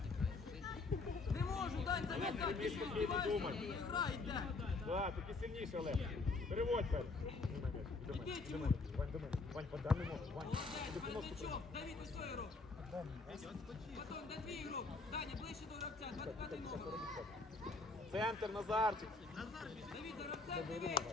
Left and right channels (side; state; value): right; quieter; 3.7 dB